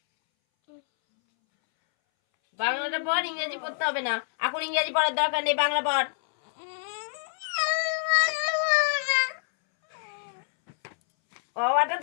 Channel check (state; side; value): silent; right; 60 dB below the other